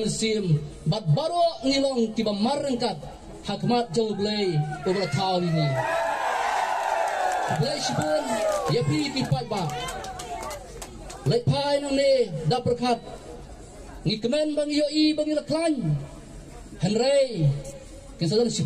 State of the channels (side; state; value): both; identical; correlation 1.00